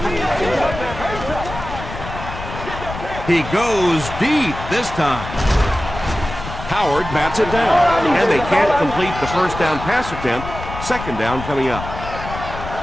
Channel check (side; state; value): left; noise; rumble, 9 dB below the sound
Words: He goes deep this time. Howard bats it down, and they can't complete the first down pass attempt. Second down coming up.